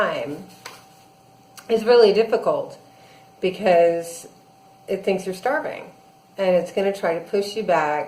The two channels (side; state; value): both; identical; correlation 1.00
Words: is really difficult because it thinks you're starving, and it's going to try to push you